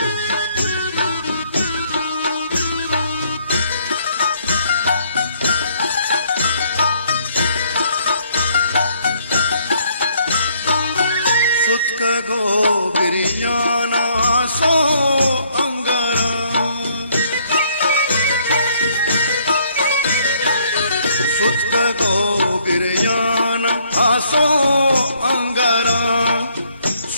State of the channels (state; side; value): inverted; both; correlation -0.66